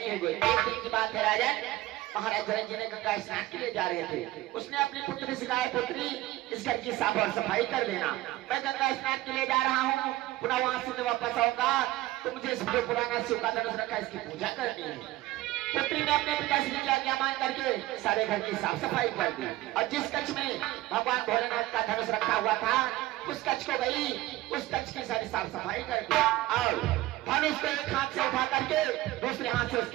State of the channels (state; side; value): quieter; left; 17.0 dB